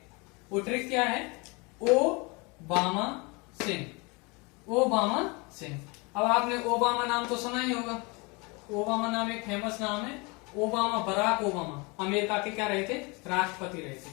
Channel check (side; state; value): right; quieter; 28.2 dB